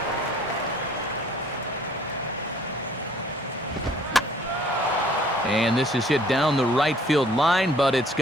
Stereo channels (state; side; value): normal; both; correlation 0.57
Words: And this is hit down the right field line, but it's